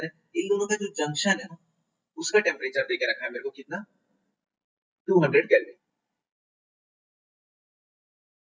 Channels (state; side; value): identical; both; correlation 1.00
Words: है, इन दोनों का जो जंक्शन है ना उसका टेम्परेचर देके रखा है मेरे को कितना, 200 kelvin.